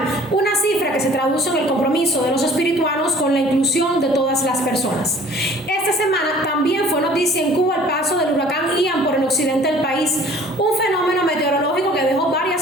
una cifra que se traduce en el compromiso de los espirituanos con la inclusión de todas las personas. Esta semana también fue noticia en Cuba el paso del huracán Ian por el occidente del país, un fenómeno meteorológico que dejó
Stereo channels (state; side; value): normal; both; correlation 0.51